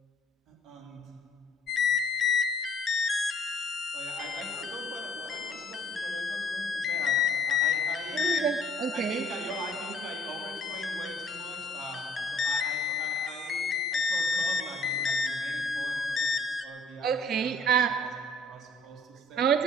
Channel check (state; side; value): normal; both; correlation 0.58